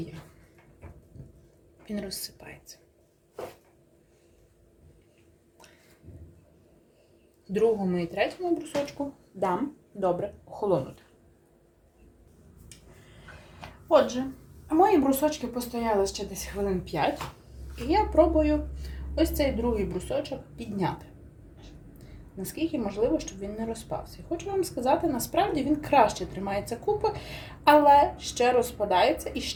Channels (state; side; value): identical; both; correlation 1.00